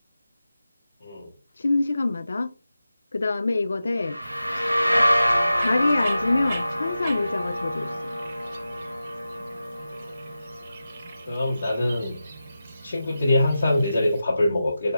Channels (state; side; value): inverted; both; correlation -0.92